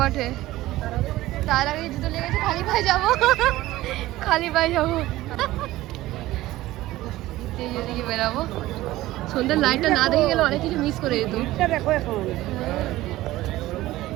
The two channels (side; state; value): left; quieter; 16.7 dB